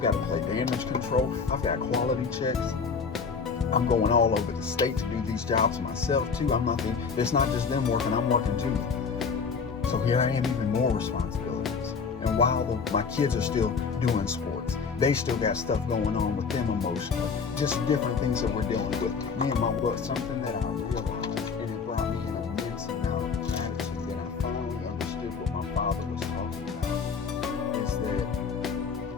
got to play damage control. I've got quality checks. I'm going all over the state to do these jobs myself too. It's not just them working, I'm working too. So here I am, even more responsibilities. And while my kids are still doing sports, they still got stuff going on with them emotionally. Just different things that we're dealing with. Me and my work, something that I realized, and it brought me an immense amount of gratitude when I finally understood what my father was talking about, is that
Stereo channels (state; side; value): quieter; right; 5.5 dB